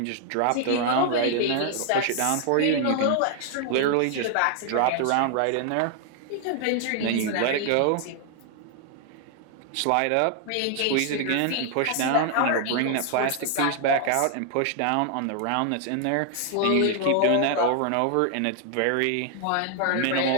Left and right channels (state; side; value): different; both; correlation 0.00